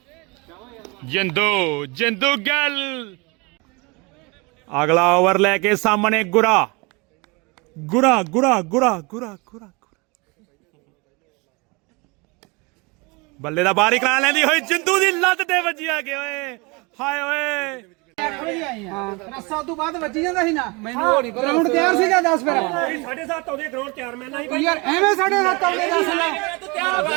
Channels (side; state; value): left; quieter; 27.6 dB